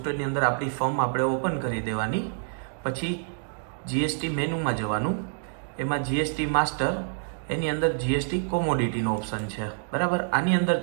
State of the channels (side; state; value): left; silent; digital silence